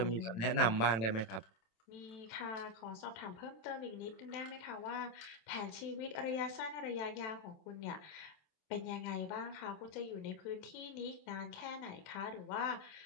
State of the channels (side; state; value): right; late; 27 ms